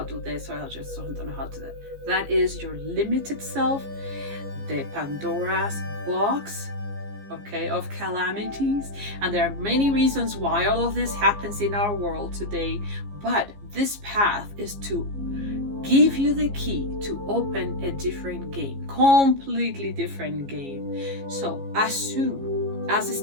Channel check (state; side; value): late; left; 15 ms